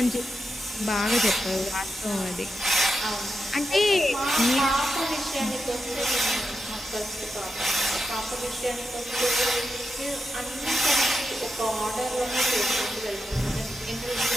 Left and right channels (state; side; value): normal; both; correlation 0.87